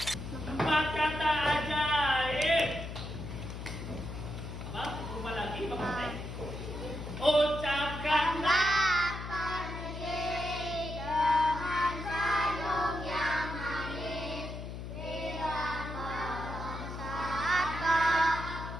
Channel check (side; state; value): left; noise; hum, 8 dB below the sound